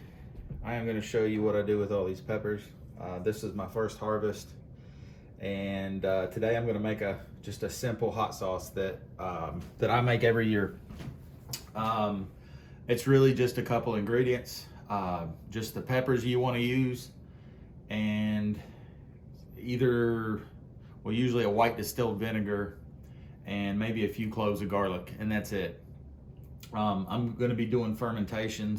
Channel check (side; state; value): both; identical; correlation 1.00